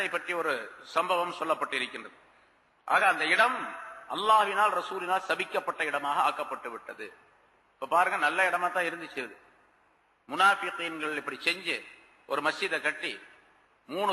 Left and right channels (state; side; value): identical; both; correlation 1.00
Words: பற்றி ஒரு சம்பவம் சொல்லப்பட்டிருக்கின்றது. ஆக அந்த இடம் அல்லாஹ்வினால் ரசூலினால் சபிக்கப்பட்ட இடமாக ஆக்கப்பட்டு விட்டது. இப்ப பாருங்க, நல்ல இடமா தான் இருந்துச்சு. முனாஃபிகீன்கள் இப்படி செஞ்சு ஒரு மஸ்ஜிதை கட்டி